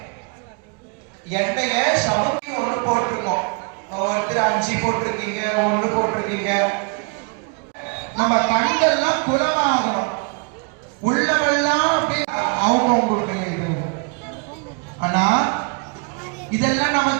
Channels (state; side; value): quieter; left; 34.0 dB